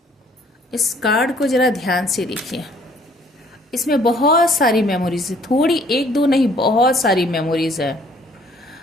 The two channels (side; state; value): both; normal; correlation 0.59